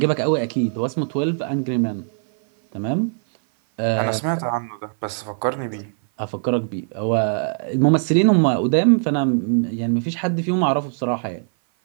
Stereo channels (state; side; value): silent; left; 57 dB below the other